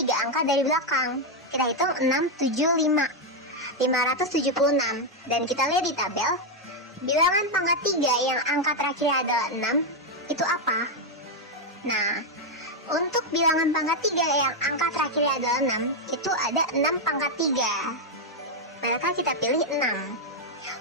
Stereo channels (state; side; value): normal; both; correlation 0.02